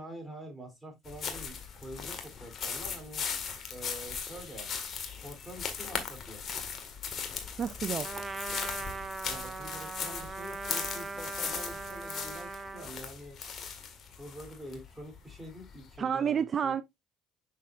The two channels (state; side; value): normal; both; correlation 0.66